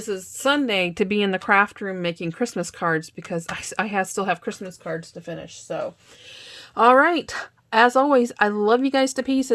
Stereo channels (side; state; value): both; identical; correlation 1.00